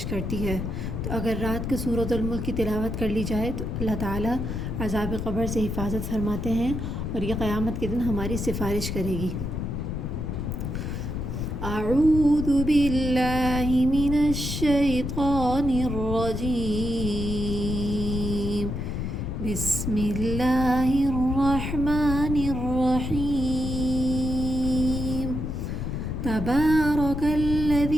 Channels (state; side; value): noise; left; rumble, 3 dB below the sound